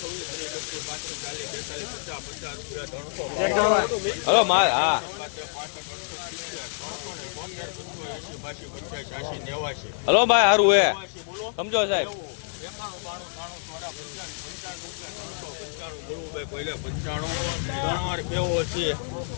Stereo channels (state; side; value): silent; right; digital silence